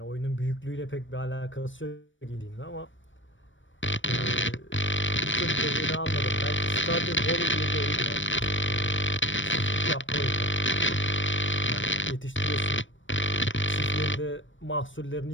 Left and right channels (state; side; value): late; right; 0.56 ms